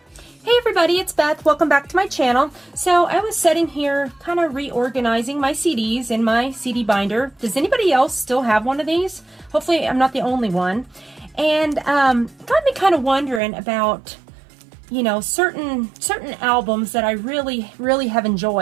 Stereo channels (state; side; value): drops out; left; at 13.4 s